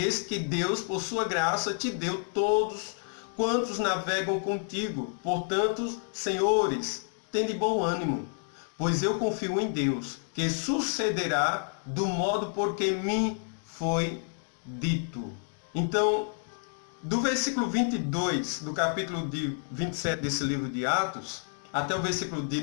eis que Deus, por sua graça, te deu todos quantos navegam contigo. Portanto, senhores, tende bom ânimo, pois eu confio em Deus, que sucederá do modo por que me foi dito. Então, do versículo 22 do capítulo 27 desse livro de Atos, até o versículo de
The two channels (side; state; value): right; silent; 58 dB below the other